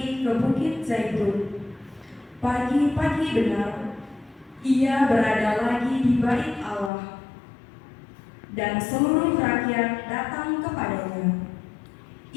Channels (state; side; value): drops out; right; at 6.9 s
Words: ke Bukit Zaitun. Pagi-pagi benar, ia berada lagi di bait Allah, dan seluruh rakyat datang kepadanya.